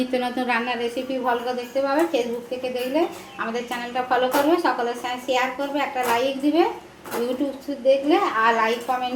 নতুন রান্নার রেসিপি ভালো দেখতে পাবে। ফেসবুক থেকে দেখলে আমাদের চ্যানেলটা ফলো করবে, সকলের সঙ্গে শেয়ার করবে, একটা লাইক দিবে। ইউটিউব দেখলে আর লাইক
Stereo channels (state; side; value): identical; both; correlation 1.00